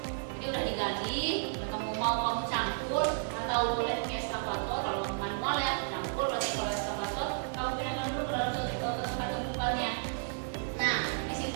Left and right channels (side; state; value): left; silent; digital silence